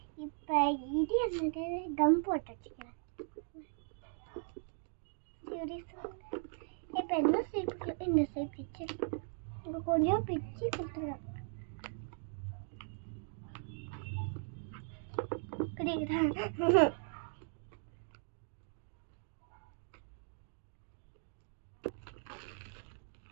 இப்போ இது என்னது கம் போட்டு வச்சுக்கிறேன். சரி சொல்லுங்க. இப்போ என்ன ஷேப்புக்கு இந்த ஷேப் பிச்சு இப்போ கொஞ்சம் பிச்சு கொடுத்துருவேன். குடிக்கிறேன்.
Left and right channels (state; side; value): silent; left; 52 dB below the other